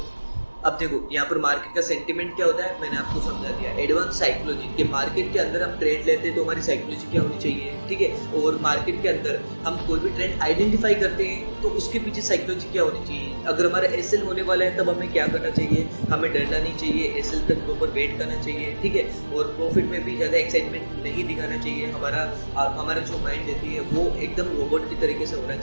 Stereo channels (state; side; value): inverted; both; correlation -1.00